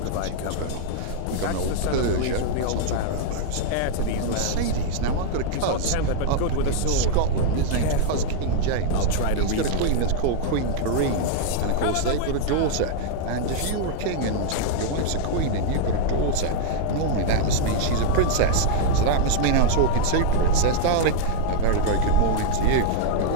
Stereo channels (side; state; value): both; different; correlation -0.01